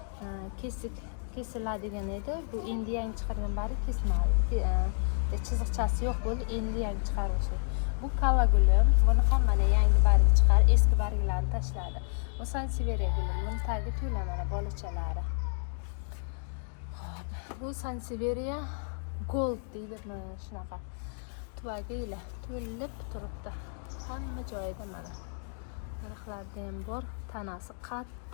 Kesiladigan edi. Bu endi yangi chiqargan barg kesilmadi. Chiziqchasi yo'q bo'ldi, endi yangi chiqaruvchi. Bu kalla gulim. Buni ham mana yangi barg chiqar, eski barglarni tashladi. Bu sanseveriya gulim. Buni tagi to'la mana bolachalari. Bu sanseveriya gold deydi mana shunaqa. Tuvagilar to'lib turibdi. Hamma joyida mana. Narxlarida ham bor. Tanasi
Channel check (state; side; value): silent; right; 57 dB below the other